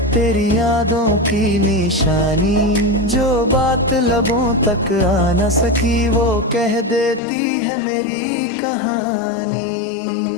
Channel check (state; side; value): drops out; right; at 7.2 s